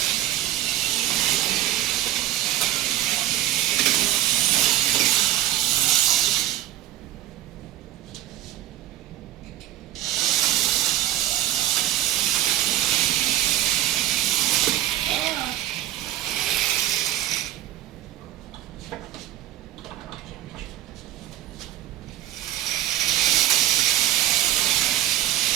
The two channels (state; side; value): quieter; left; 13.9 dB